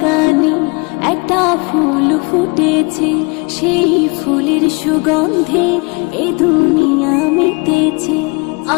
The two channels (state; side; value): quieter; right; 29.4 dB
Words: একটা ফুল ফুটেছে, সেই ফুলের সুগন্ধে এ দুনিয়া মেতেছে।